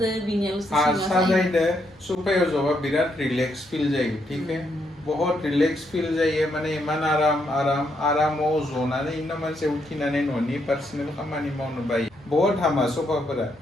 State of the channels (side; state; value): both; normal; correlation 0.77